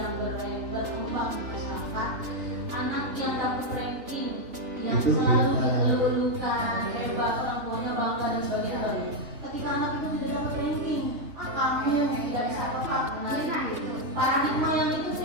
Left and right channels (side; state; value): left; late; 3.2 ms